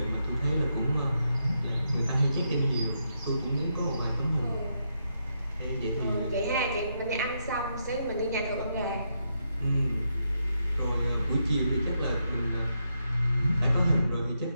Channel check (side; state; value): both; inverted; correlation -0.81